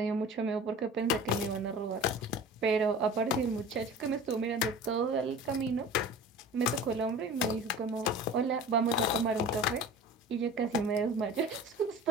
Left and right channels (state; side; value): normal; both; correlation 0.39